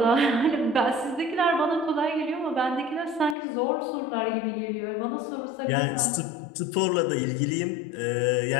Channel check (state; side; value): drops out; right; at 3.4 s